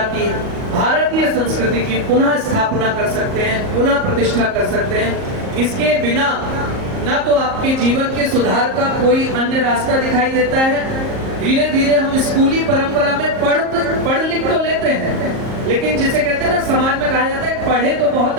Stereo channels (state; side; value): late; left; 38 ms